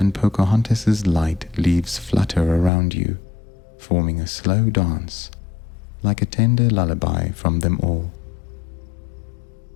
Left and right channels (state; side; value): drops out; right; at 2.7 s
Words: Pocahontas's light leaves flutter around you, forming a slow dance, like a tender lullaby from them all.